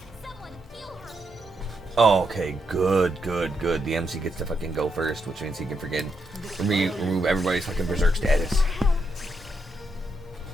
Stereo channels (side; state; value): both; normal; correlation 0.80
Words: Someone heal her. Oh, okay. Good, good, good. The MC gets to fucking go first, which means he can freaking remove everybody's fucking berserk status.